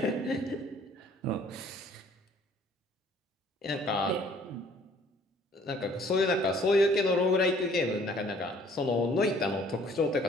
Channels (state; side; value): normal; both; correlation 0.57